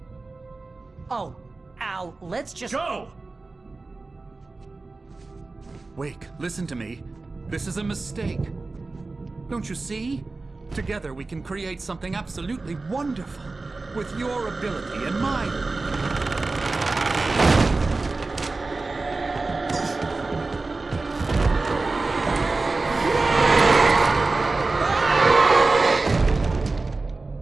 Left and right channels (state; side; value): quieter; left; 3.5 dB